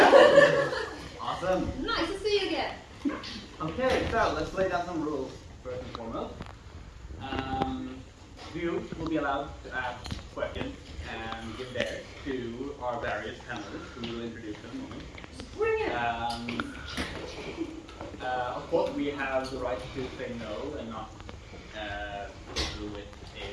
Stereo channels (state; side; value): identical; both; correlation 1.00